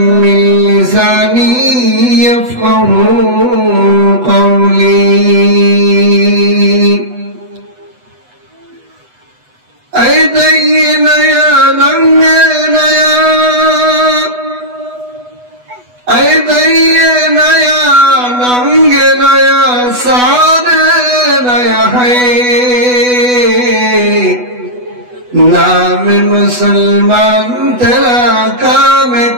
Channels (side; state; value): left; late; 8.1 ms